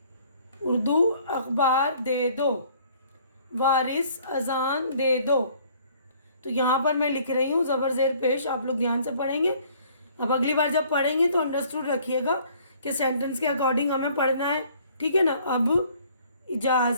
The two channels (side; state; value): both; inverted; correlation -0.58